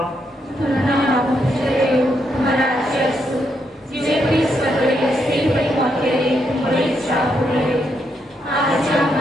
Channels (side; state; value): both; normal; correlation 0.79